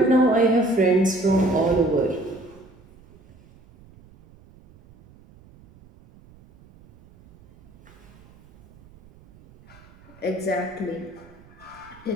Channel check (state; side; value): noise; right; rumble, 25 dB below the sound